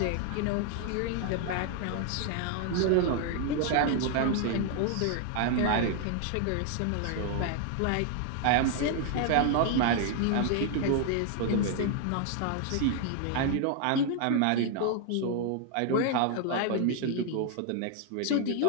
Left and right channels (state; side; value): different; both; correlation 0.00